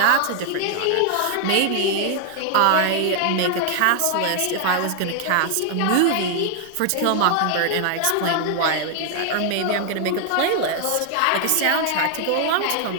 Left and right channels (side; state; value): both; different; correlation 0.00